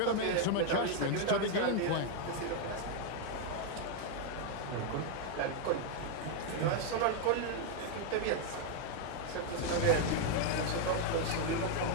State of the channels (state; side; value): different; both; correlation 0.01